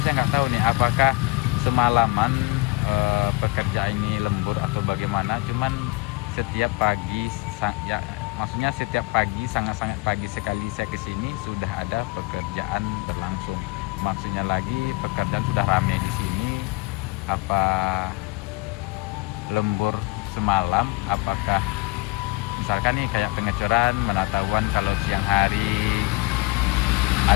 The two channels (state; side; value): quieter; right; 23.6 dB